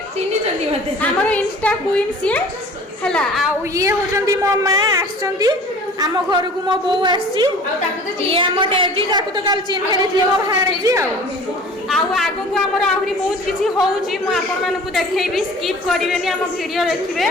चिनी चंदी मते हमर इंस्टा क्वीन सी हला आउ ये होचंदी मो मां आछंती हम घर को मो बो आसी ये हम डेजी ताकू तो काल चिन्ह देथि मो भाणजी आउ आगो को हमर आहुरी बहुत किछि होउची मो आपण मान को देखेबी स्किप करिवेनी हम वीडियो देखिबे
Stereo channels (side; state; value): both; normal; correlation 0.44